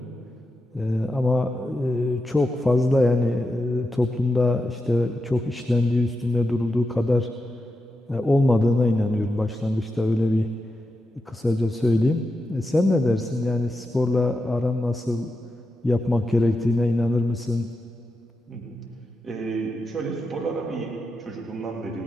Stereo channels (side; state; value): both; normal; correlation 0.88